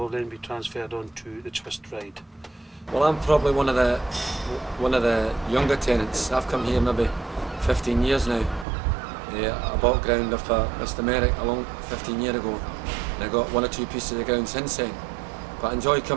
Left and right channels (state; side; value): drops out; left; at 8.7 s